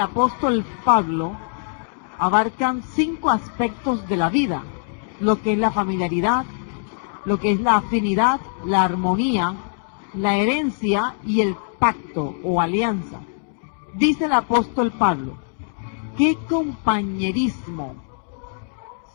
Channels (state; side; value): silent; right; digital silence